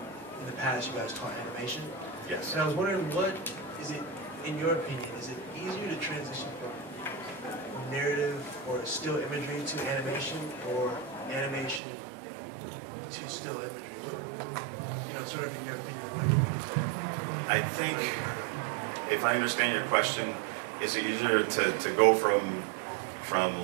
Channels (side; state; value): left; drops out; at 11.8 s